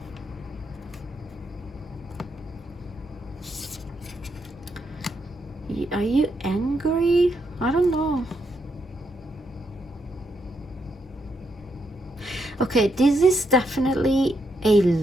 Are you angry? I don't know. Okay, this is definitely a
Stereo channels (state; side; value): normal; both; correlation 0.79